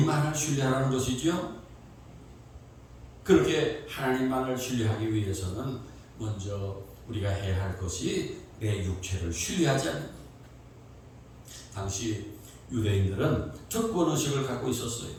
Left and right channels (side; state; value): both; identical; correlation 1.00